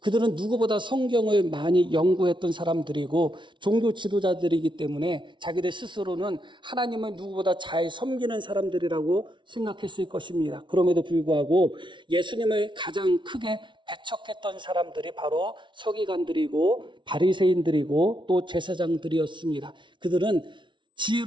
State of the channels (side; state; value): left; late; 0.24 ms